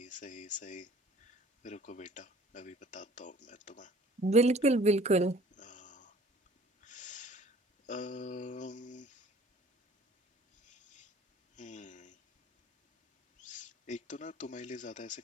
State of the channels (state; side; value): normal; both; correlation 0.51